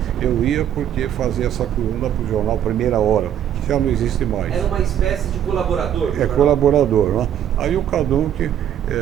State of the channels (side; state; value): left; quieter; 10.1 dB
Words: eu ia porque fazia essa coluna para o jornal Primeira Hora, que já não existe mais. Era uma espécie de colaborador? Colaborador, né? Aí o Cadunc